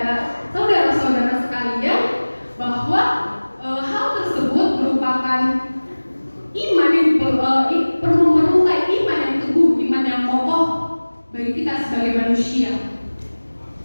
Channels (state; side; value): inverted; both; correlation -1.00